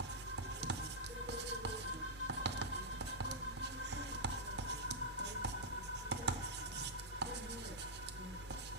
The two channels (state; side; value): normal; both; correlation -0.08